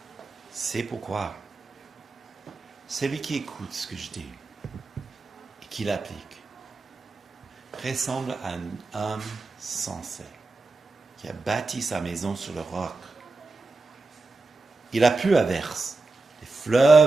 C'est pourquoi celui qui écoute ce que je dis et qui l'applique ressemble à un homme sensé qui a bâti sa maison sur le roc. Il a plu à verse. Les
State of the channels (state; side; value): quieter; left; 3.5 dB